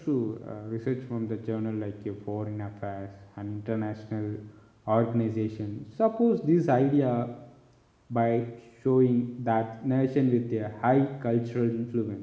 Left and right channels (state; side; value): identical; both; correlation 1.00